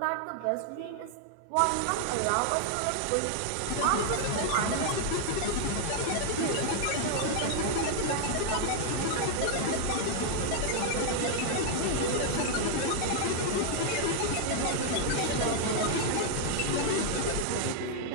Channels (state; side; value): different; both; correlation 0.00